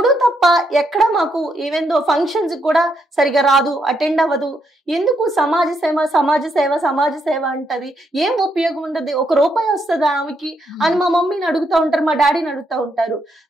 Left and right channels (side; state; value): both; normal; correlation 0.77